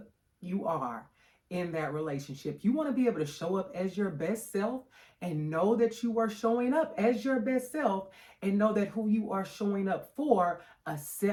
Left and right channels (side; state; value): both; identical; correlation 1.00